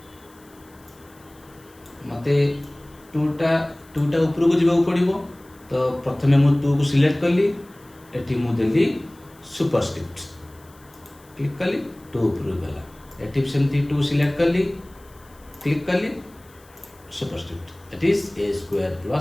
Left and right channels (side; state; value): left; noise; hiss, 28 dB below the sound